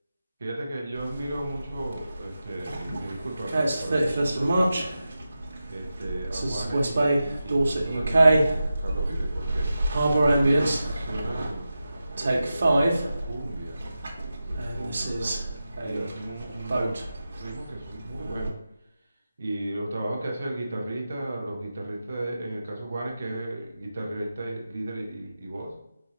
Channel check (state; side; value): inverted; both; correlation -0.92